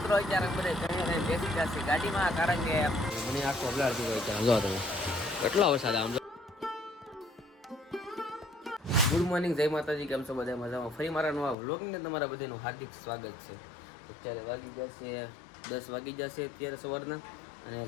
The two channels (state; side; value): drops out; right; at 11.6 s